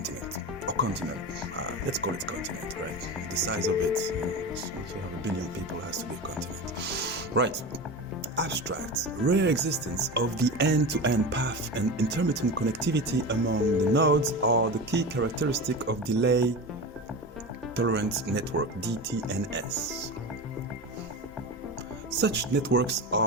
or continent. Let's call it continent, right? The size of it, once you have 1 billion people, it has to be a continent, right? Abstract, rare existence of the end-to-end path and intermittent connectivity among the nodes are the key characteristic of delay tolerant network, DTNS. Such networks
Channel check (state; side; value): normal; both; correlation 0.26